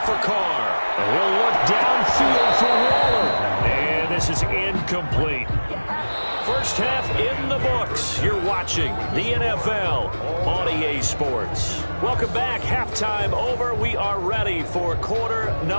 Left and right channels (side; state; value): both; inverted; correlation -1.00